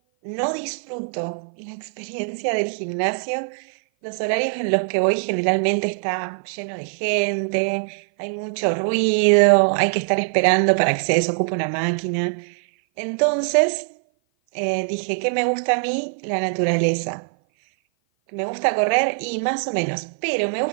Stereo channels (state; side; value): silent; left; 56 dB below the other